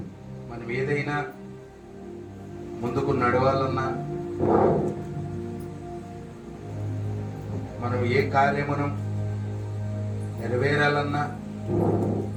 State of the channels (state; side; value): identical; both; correlation 1.00